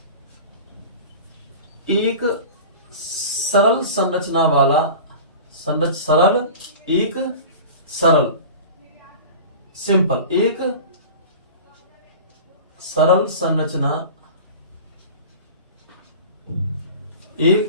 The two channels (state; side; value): inverted; both; correlation -0.37